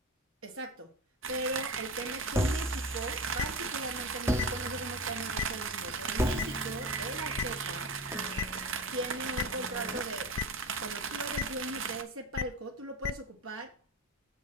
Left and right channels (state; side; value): normal; both; correlation 0.27